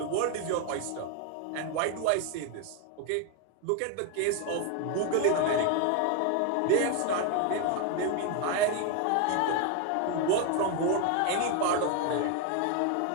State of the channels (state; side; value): different; both; correlation 0.01